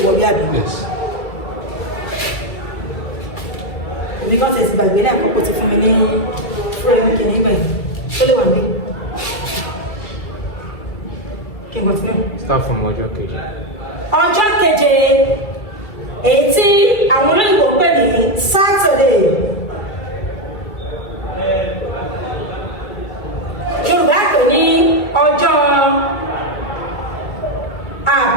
wọlé àbí? Yes. Èmi kan tẹ̀sí gbàgbé lẹ́ẹ̀kan kó ti fún mi ní fúrẹ́mù kìíní báyìí. Ó lè wà níbí. Kí n continue. Start from ọjọ́ keje. Ọjọ́ keje èyí tí àwọn olóyìnbó pè ní Saturday. Yorùbá pè ní ọjọ́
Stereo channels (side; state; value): right; late; 2.3 ms